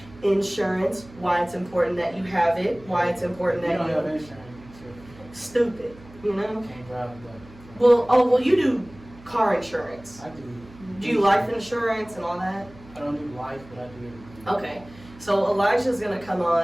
insurance, why it's important that you have it, why it's important You that don't have you insurance. stupid, you You know. can't drive that. Well, you do car insurance. I do. Do you life insurance and all that? I don't do life, but I do everything. Okay. So Elijah's gonna come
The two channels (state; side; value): noise; right; hum, 21 dB below the sound